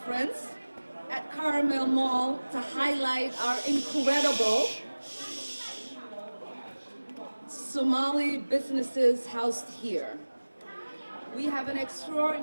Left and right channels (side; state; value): both; inverted; correlation -1.00